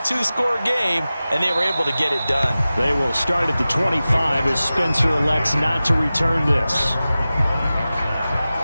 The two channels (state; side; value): inverted; both; correlation -0.96